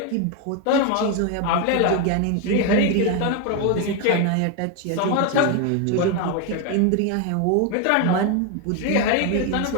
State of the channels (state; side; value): different; both; correlation 0.01